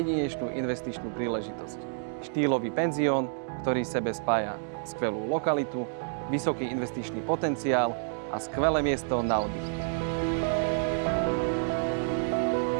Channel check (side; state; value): left; silent; digital silence